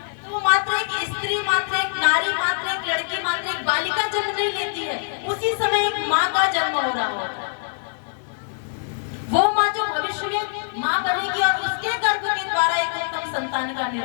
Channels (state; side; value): silent; right; digital silence